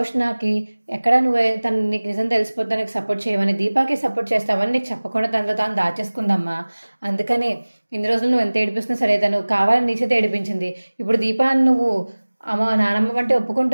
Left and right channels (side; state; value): both; inverted; correlation -1.00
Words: ఎక్కడ నువ్వు తను నీకు నిజం తెలిసిపోతే నీకు సపోర్ట్ చేయవని దీపాకి సపోర్ట్ చేస్తావని నీకు చెప్పకుండా తనలో తాను దాచేసుకుందమ్మా. అందుకనే ఇన్ని రోజులు నువ్వు ఎంత ఏడిపిస్తున్నా సరే తను కావాలని నీ చేత ఏడిపించింది. ఇప్పుడు దీపాన్ని నువ్వు అమ్మ నానమ్మ అంటే